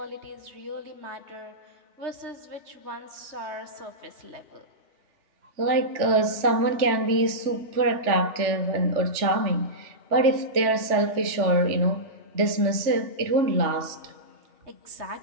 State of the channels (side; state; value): left; late; 3.4 ms